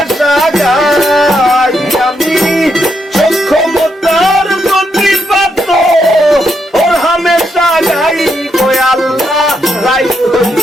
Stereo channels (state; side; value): normal; both; correlation 0.79